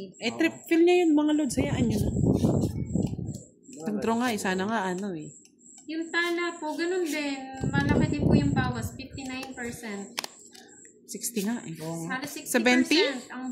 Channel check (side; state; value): both; identical; correlation 1.00